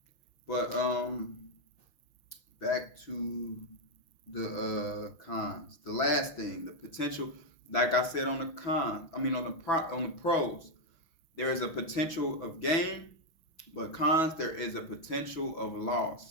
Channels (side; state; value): right; late; 6.1 ms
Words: but back to the cons. The last thing, the potential. Like I said on the cons, on the pros, there is a potential of gain, but cons, there is a potential of